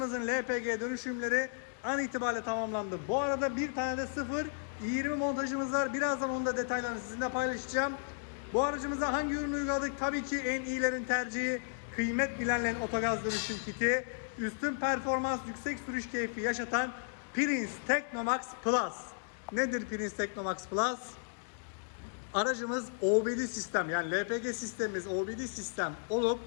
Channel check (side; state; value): right; silent; digital silence